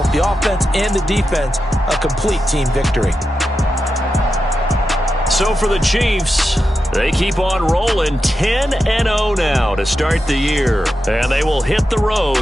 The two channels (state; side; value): normal; both; correlation 0.89